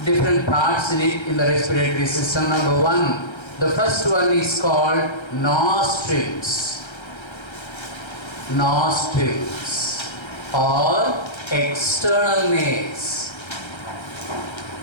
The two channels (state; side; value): late; right; 1.3 ms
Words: different parts in it in the respiratory system. Number 1, the first one is called nostrils. Nostrils or external nares.